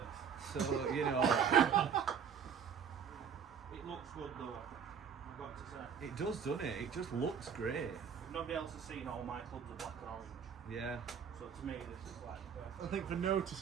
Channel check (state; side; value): quieter; left; 7.2 dB